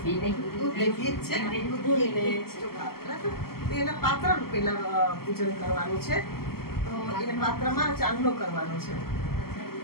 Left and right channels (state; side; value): late; right; 0.94 ms